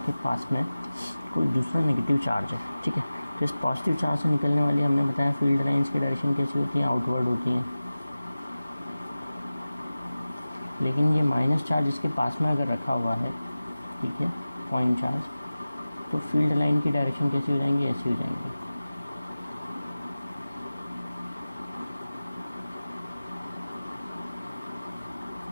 पास में कोई दूसरा नेगेटिव चार्ज है, ठीक है, तो इस पॉजिटिव चार्ज से निकलने वाली, हमने बताया फील्ड लाइंस की डायरेक्शन कैसी होती है, आउटवर्ड होती हैं। लेकिन ये माइनस चार्ज इसके पास में अगर रखा हुआ है, ठीक है, पॉइंट चार्ज, तो फील्ड लाइन की डायरेक्शन कैसी हो जाएंगी, ऐसी हो जाएंगी।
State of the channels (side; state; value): both; inverted; correlation -0.96